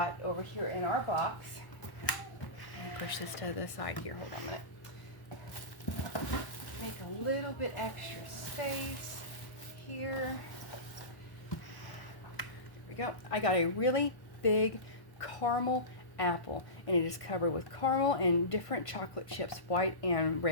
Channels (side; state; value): right; late; 1.0 ms